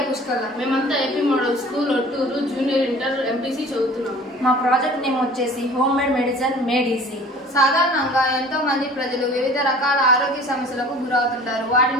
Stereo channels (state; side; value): normal; both; correlation 0.46